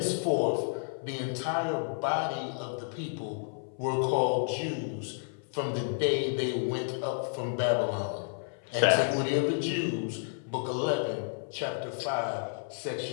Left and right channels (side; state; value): right; silent; 57 dB below the other